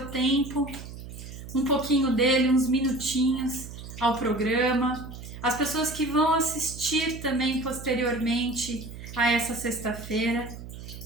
tempo, um pouquinho dele, uns minutinhos ao programa. As pessoas que vão assistir também posteriormente a essa sexta-feira,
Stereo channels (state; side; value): noise; right; hum, 12 dB below the sound